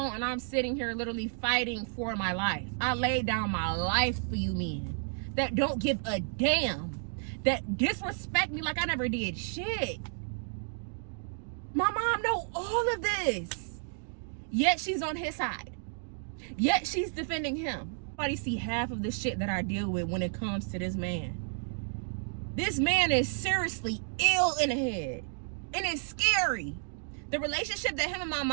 And I'm sitting here literally fighting for my life. I laid down my life for you men that don't give a damn, that disrespect me like I never did shit. My mom know all of this. Yet she's on his side. Yet she's defending him. Nobody see half of the shit that I deal with when it comes to this man. This man is seriously ill in the head. And it's scary. The relationship that him and my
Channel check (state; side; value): silent; left; 57 dB below the other